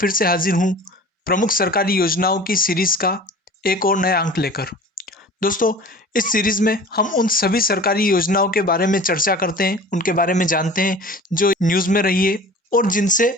से हाजिर हूं प्रमुख सरकारी योजनाओं की सीरीज़ का एक और नया अंक लेकर। दोस्तों, इस सीरीज़ में हम उन सभी सरकारी योजनाओं के बारे में चर्चा करते हैं, उनके बारे में जानते हैं जो न्यूज़ में रही है और जिनसे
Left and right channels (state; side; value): normal; both; correlation 0.41